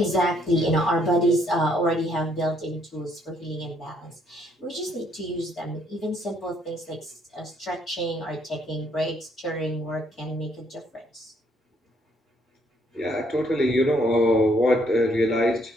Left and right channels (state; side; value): normal; both; correlation 0.69